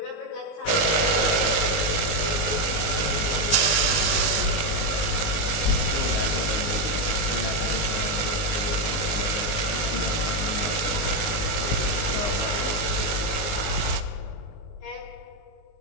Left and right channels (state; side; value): late; right; 19 ms